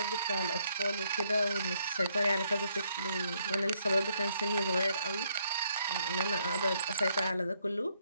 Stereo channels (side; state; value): both; inverted; correlation -0.72